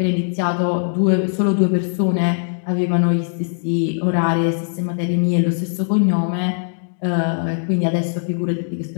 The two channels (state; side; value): silent; right; digital silence